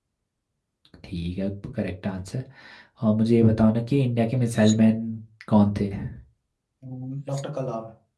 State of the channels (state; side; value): identical; both; correlation 1.00